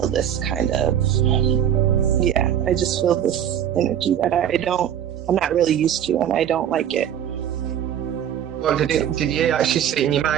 this kind of, I just feel this energy that I'm not really used to, and I don't like it. Well, did you actually see it in your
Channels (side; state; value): left; quieter; 10.0 dB